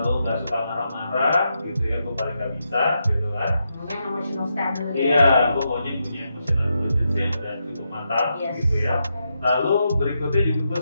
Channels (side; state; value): both; inverted; correlation -0.84